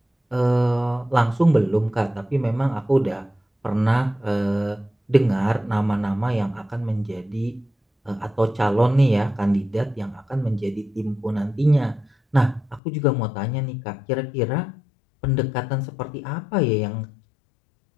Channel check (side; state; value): right; drops out; at 12.8 s